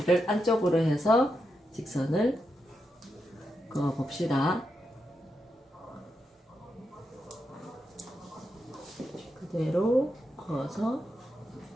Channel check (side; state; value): both; normal; correlation 0.85